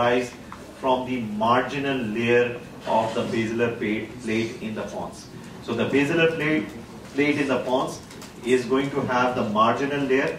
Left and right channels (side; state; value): both; identical; correlation 1.00